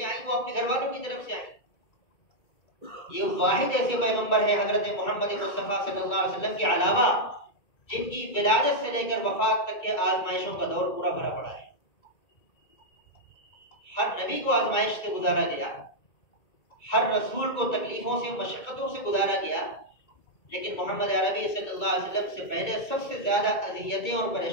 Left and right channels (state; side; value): late; right; 2.2 ms